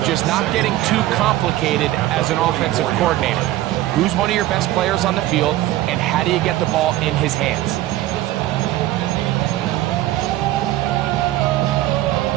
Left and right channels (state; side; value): quieter; left; 15.3 dB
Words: just not getting too complicated as an offensive coordinator. Who's one of your best players on the field, and how do you get the ball in his hands?